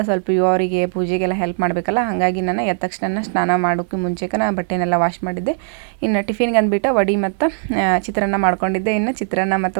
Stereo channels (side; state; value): left; silent; 66 dB below the other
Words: ಸ್ವಲ್ಪ ಇವರಿಗೆ ಪೂಜೆಗೆಲ್ಲ ಹೆಲ್ಪ್ ಮಾಡಬೇಕಲ್ಲ. ಹಾಗಾಗಿ ನಾನು ಎದ್ದ ತಕ್ಷಣ ಸ್ನಾನ ಮಾಡೋಕ್ಕೂ ಮುಂಚೆಗೆ ನಾನು ಬಟ್ಟೆನೆಲ್ಲ ವಾಶ್ ಮಾಡಿದ್ದೆ. ಇನ್ನು ಟಿಫಿನ್ಗೆ ಅಂದ್ಬಿಟ್ಟು ವಡೆ ಮತ್ತು ಚಿತ್ರಾನ್ನ ಮಾಡ್ಕೊಂಡಿದ್ದೆ. ಇನ್ನು ಚಿತ್ರಾನ್ನ